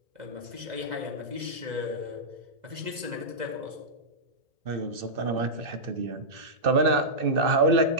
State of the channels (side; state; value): left; late; 2.0 ms